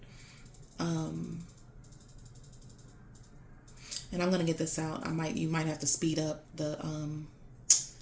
and I'm gonna get this out. You might have to speed up the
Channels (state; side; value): identical; both; correlation 1.00